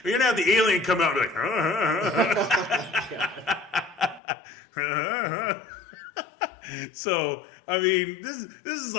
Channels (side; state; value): right; drops out; at 4.2 s